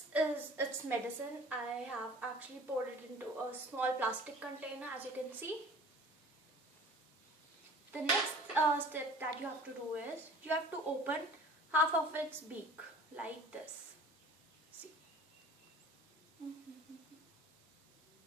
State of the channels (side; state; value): both; normal; correlation 0.45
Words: is its medicine. I have actually poured it into a small plastic container, as you can see. The next step that you have to do is you have to open half of its beak like this. See.